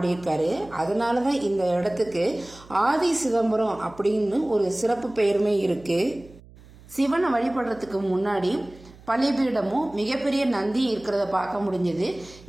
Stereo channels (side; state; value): right; noise; hum, 22 dB below the sound